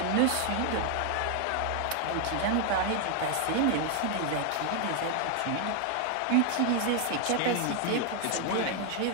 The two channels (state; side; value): different; both; correlation 0.00